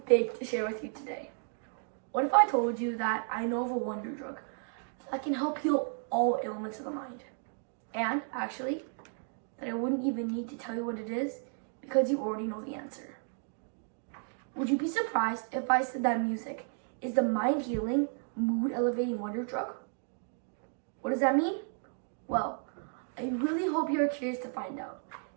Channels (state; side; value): silent; left; 56 dB below the other